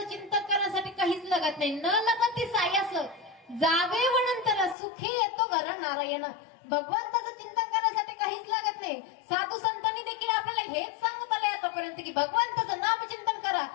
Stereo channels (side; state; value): right; drops out; at 4.8 s